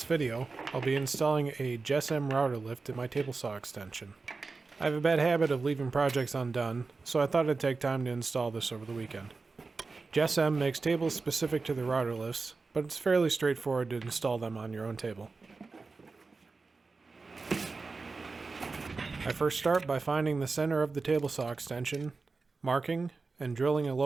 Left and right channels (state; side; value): quieter; left; 4.1 dB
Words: video, I'll be installing a JessEm Rout-R-Lift in my table saw extension. I have a bad habit of leaving projects undone, so I thought I'd take time to install this over the weekend. JessEm makes tables specific to the Rout-R-Lifts, but it's fairly straightforward to install them on your own table. I first start by finding the center of the table saw extension, marking, and drilling a